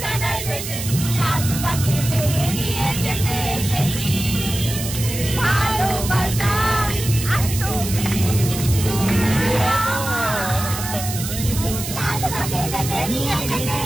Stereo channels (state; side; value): noise; right; hiss, 7 dB below the sound